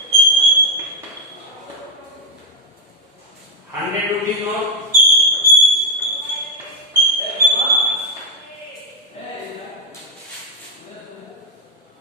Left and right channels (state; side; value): normal; both; correlation 0.02